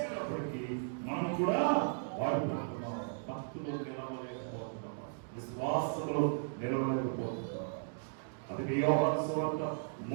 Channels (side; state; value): left; silent; digital silence